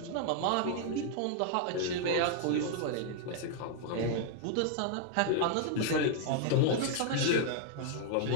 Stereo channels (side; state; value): both; different; correlation 0.00